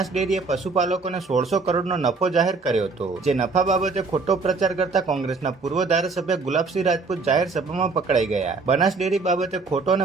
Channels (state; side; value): quieter; left; 4.2 dB